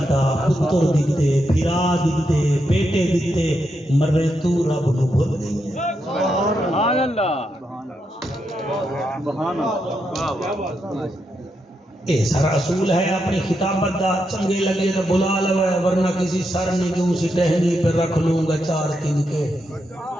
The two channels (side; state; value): both; normal; correlation 0.83